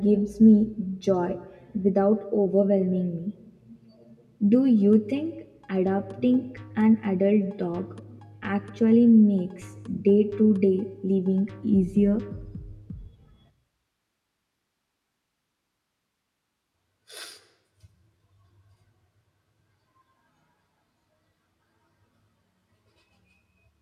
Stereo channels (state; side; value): identical; both; correlation 1.00